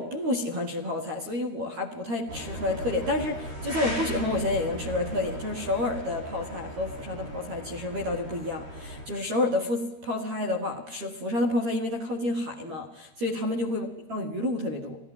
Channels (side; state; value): left; late; 13 ms